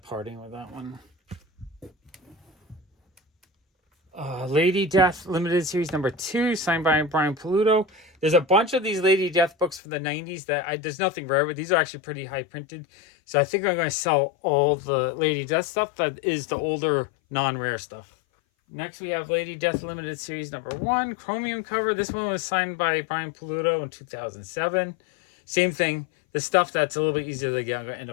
parting with that one. Lady Death Limited Series #2, signed by Brian Paluto. There's a bunch of these Lady Death books from the 90s that there's nothing rare, but these are actually pretty high printed. So I think I'm going to sell all the Lady Death stuff that is the older non-rare stuff. Next we have Lady Death Limited Series #1, chromium cover. This one was signed by Brian Paluto in 2007. Same thing. The stuff that's a little bit easier to get, I'm going to end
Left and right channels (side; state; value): right; drops out; at 9.8 s